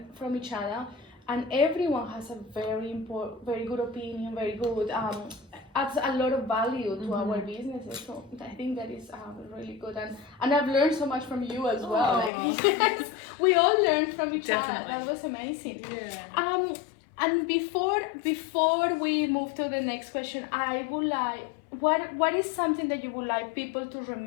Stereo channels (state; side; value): drops out; right; at 12.3 s